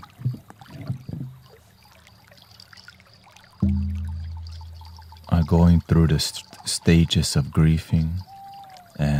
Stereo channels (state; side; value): identical; both; correlation 1.00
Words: are going through the stages of grieving